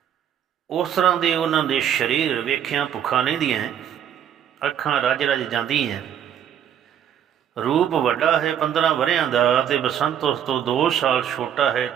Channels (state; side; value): quieter; left; 9.5 dB